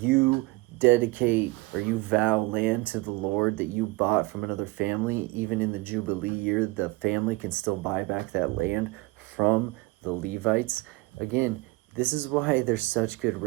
dedicate or you vow land to the Lord that you bought from another family. Even in the Jubilee year, the family can still buy back that land from the Levites. Again, this is why they're such good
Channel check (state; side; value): quieter; left; 23.3 dB